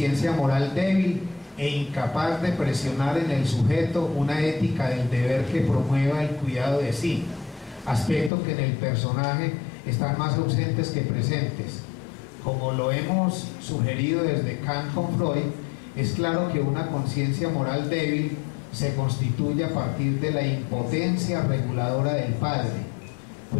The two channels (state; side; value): drops out; right; at 8.3 s